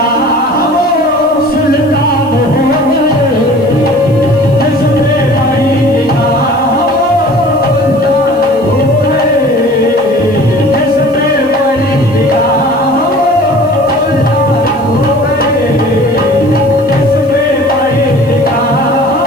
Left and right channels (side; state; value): left; noise; hiss, 29 dB below the sound